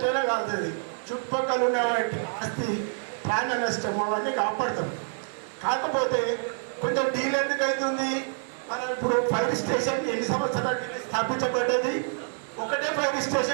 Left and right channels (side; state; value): left; silent; digital silence